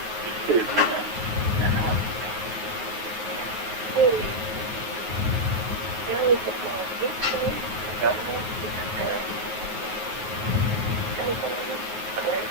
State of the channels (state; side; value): late; left; 9.4 ms